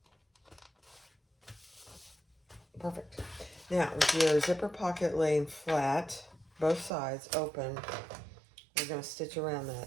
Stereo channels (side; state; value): left; drops out; at 6.9 s